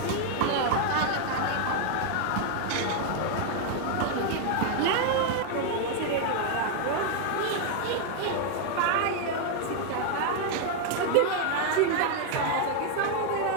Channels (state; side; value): different; both; correlation 0.00